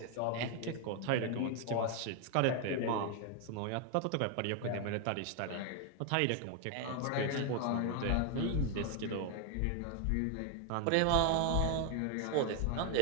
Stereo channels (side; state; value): both; different; correlation 0.01